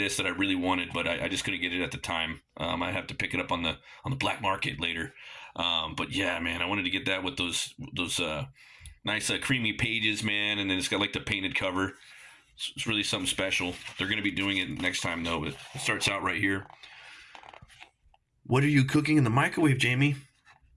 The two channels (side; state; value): both; identical; correlation 1.00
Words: that I really wanted, but I just couldn't get it at the time. I have to pick it up on the black market later. But yeah, man, I wanted to get that with those nice creamy pages, man, and then it's got like the painted cover. It's really something special. They're going to be doing it next time though. But it starts out right here. What are you cooking in the microwave, Jamie?